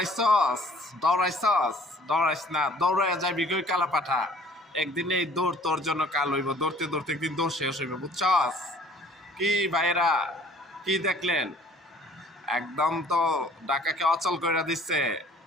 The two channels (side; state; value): both; normal; correlation 0.54